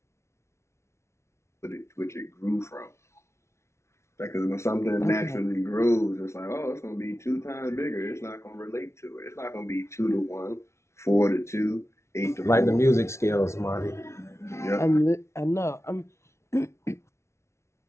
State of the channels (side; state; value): right; late; 0.13 ms